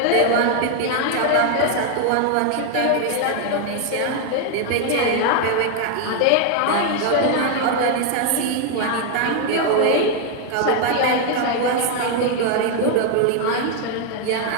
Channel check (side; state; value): both; different; correlation 0.01